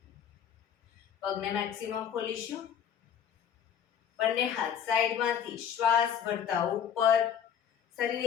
પગને મેક્સિમમ ખોલીશું. બંને હાથ સાઈડમાંથી શ્વાસ ભરતા ઉપર. શરીર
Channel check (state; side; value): quieter; right; 8.7 dB